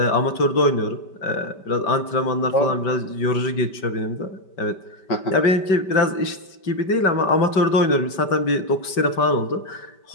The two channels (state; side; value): late; right; 5.2 ms